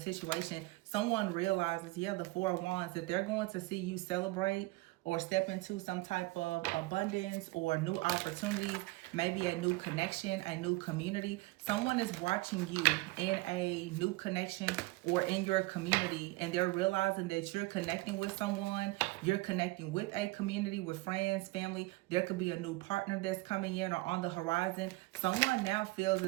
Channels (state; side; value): quieter; left; 21.8 dB